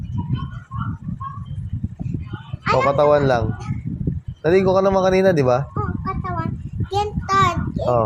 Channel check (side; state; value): both; identical; correlation 1.00